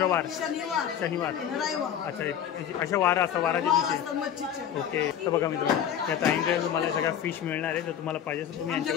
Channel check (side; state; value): right; quieter; 9.4 dB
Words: शनिवार. अच्छा अशा वार असतात वाराच्या दिवशी. ओके. तर बघा मी तुम्हाला त्या ताईंकडे तुम्हाला सगळ्या फिश मिळणार आहे. जर तुम्हाला पाहिजे असेल तुम्ही